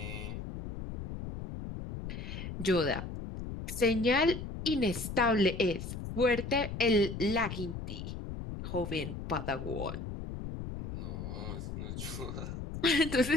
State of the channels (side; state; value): left; noise; rumble, 7 dB below the sound